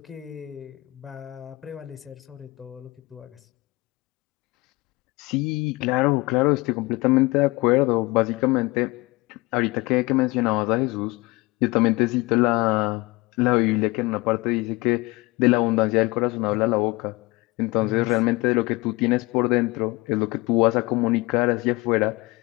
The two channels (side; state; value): right; quieter; 22.2 dB